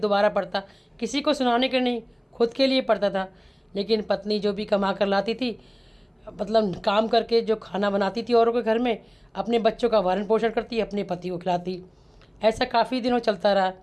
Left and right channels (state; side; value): identical; both; correlation 1.00